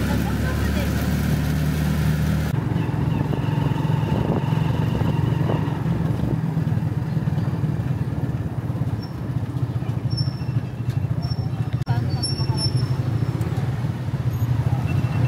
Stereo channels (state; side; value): identical; both; correlation 1.00